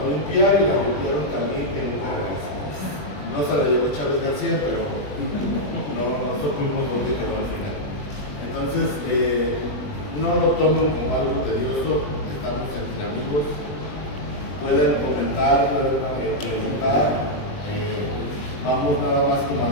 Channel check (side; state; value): right; late; 20 ms